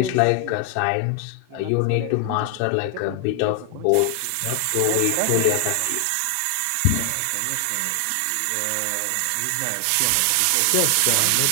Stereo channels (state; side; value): different; both; correlation 0.00